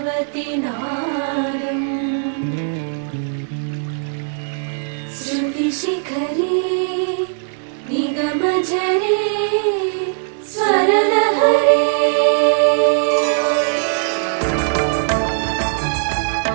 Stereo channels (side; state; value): left; silent; digital silence